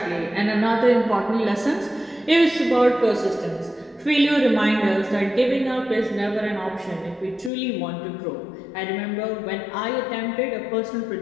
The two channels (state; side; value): drops out; right; at 7.5 s